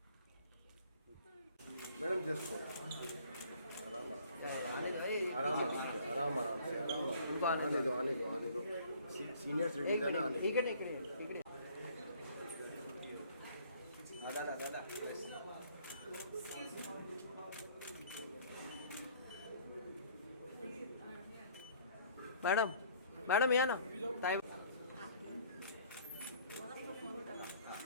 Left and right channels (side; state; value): both; inverted; correlation -0.56